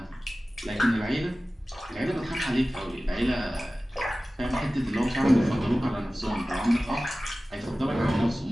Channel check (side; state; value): both; normal; correlation 0.96